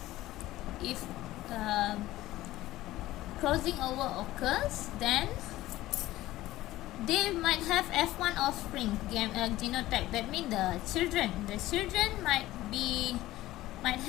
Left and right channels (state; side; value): quieter; right; 16.2 dB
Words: if crossing over occurs, then they might have F1 offspring genotype. That means the children might